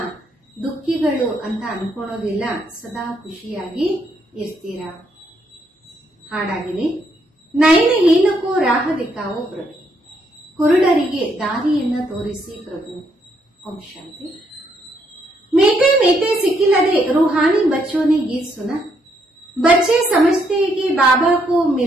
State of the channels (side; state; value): both; normal; correlation 0.73